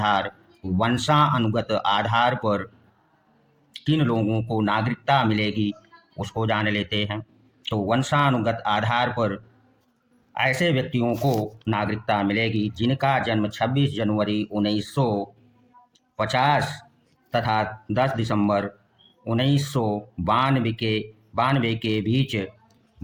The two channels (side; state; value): both; identical; correlation 1.00